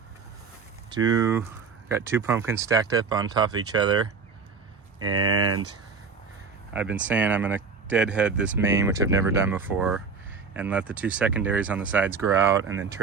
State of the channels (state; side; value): quieter; left; 5.1 dB